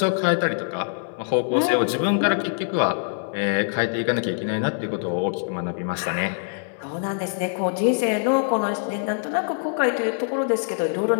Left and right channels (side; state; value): right; silent; 60 dB below the other